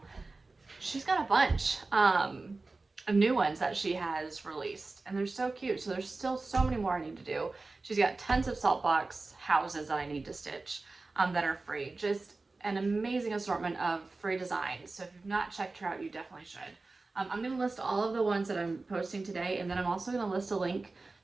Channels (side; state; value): left; quieter; 3.5 dB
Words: She's got a bunch of new ones that she has released, and they're so cute. So there's still so many more I need to do. She's got tons of salt box houses that I need to stitch that are free. Just an amazing assortment of free designs. So if you've not checked her out, you definitely should. I'm going to list all of the ones that I'm posting today, and then I'm also going to list a link